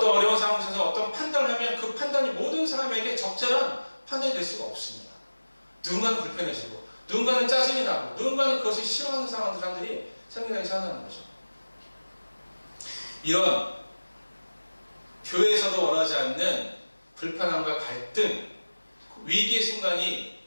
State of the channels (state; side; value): inverted; both; correlation -1.00